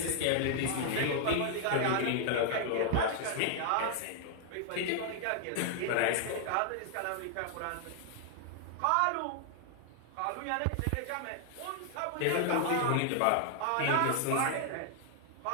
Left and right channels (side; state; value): both; different; correlation 0.00